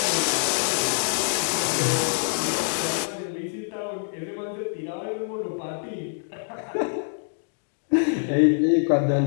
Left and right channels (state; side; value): silent; right; digital silence